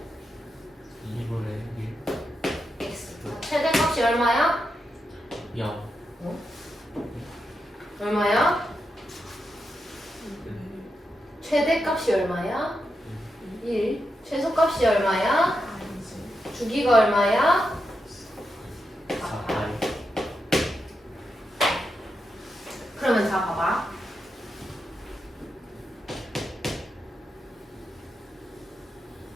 2분의 x. 최대값이 얼마야? 1. 0. 얼마야? 최대값이 얼마야? 1. 최소값이 얼마야? 주기가 얼마야? 4파이. 그러면 자 봐봐.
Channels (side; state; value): both; normal; correlation 0.86